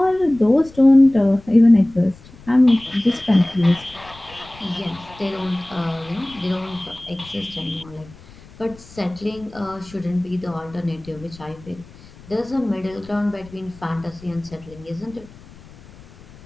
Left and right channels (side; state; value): left; noise; rumble, 22 dB below the sound